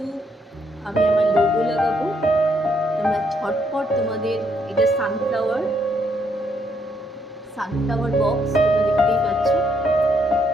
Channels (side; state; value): both; normal; correlation 0.73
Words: আমি আমার লোগো লাগাবো। তোমরা ঝটপট তোমাদের এটা সানফ্লাওয়ার বক্স তোমরা দেখতেই পাচ্ছ।